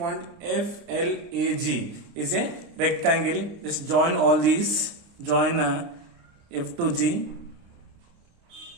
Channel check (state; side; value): late; left; 29 ms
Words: FLAG is a rectangle. Just join all these. Join F to G.